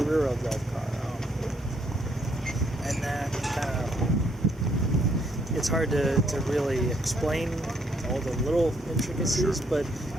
rear-wheel drive car, and that kind of, it's hard to really explain all the little intricacies, but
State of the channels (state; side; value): normal; both; correlation 0.71